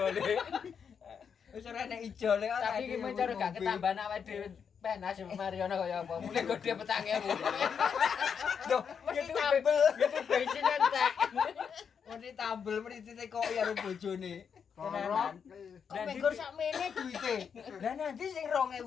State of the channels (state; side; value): quieter; right; 6.9 dB